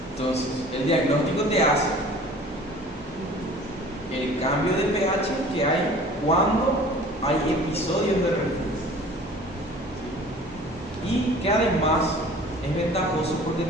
Entonces, el diagnóstico te hace el cambio de pH que hay cuando hay episodios de reflujo. Y que además es ventajoso porque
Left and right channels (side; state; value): both; normal; correlation 0.46